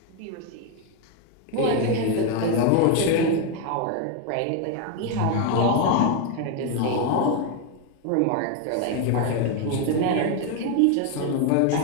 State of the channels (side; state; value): both; different; correlation 0.01